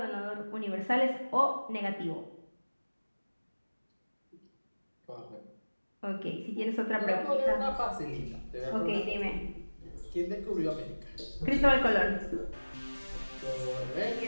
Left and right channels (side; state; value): both; inverted; correlation -1.00